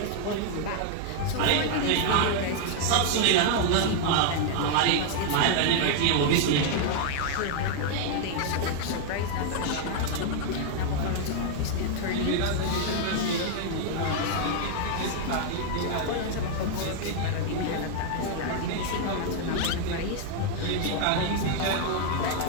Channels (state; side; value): different; both; correlation 0.00